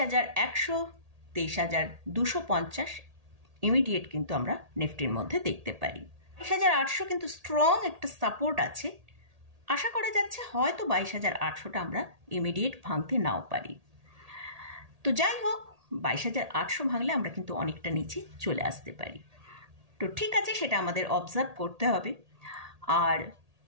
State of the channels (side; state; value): left; late; 1.8 ms